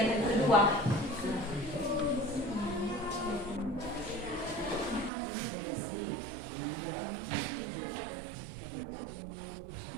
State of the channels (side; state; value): left; drops out; at 5.1 s